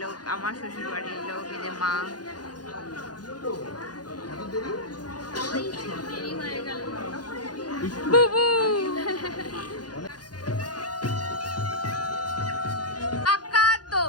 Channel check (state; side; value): late; right; 0.69 ms